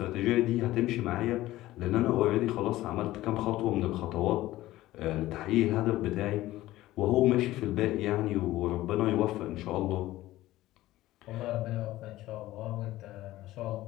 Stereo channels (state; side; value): quieter; right; 16.2 dB